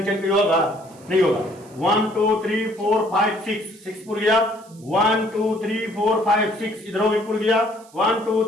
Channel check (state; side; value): noise; right; hiss, 26 dB below the sound